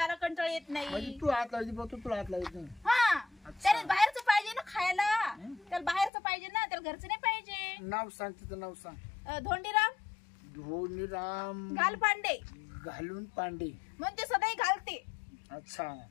कंटाळ येत म्हणजे नाही. तू हात लावायची बघ, तुला हात लावायचं नाही. हा त्याला बाहेरचं पाहिजे ना खायला. त्याला बाहेरचं पाहिजे ना, त्याला घरचं नाही पाहिजे. नाव सांग, तिचं नाव सांग. धोंडीराम धोनीराम घालपांडे. घालून पांडे. मग ते सदाही घालते. अच्छा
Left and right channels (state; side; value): drops out; right; at 6.1 s